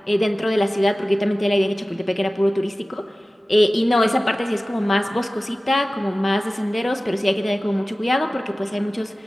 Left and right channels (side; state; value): both; normal; correlation 0.97